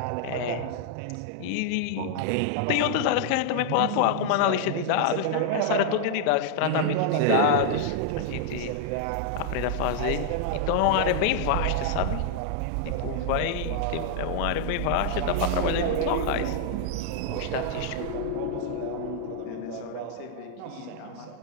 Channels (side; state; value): both; different; correlation -0.01